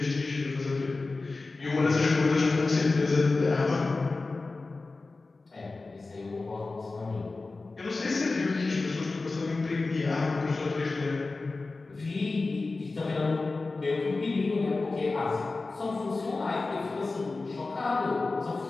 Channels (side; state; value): right; quieter; 3.6 dB